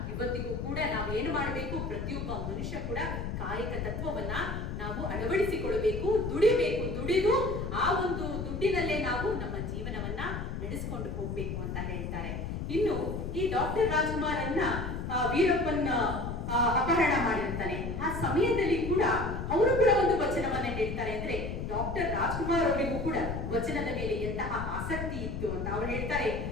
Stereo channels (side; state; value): left; noise; rumble, 4 dB below the sound